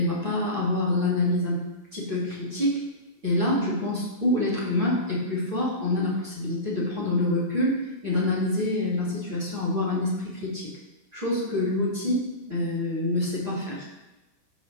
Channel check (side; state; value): left; late; 7.4 ms